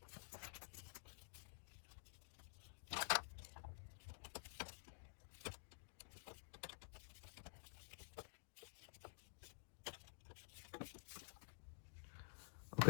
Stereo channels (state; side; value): silent; right; digital silence